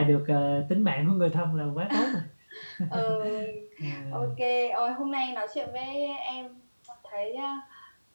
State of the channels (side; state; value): both; inverted; correlation -1.00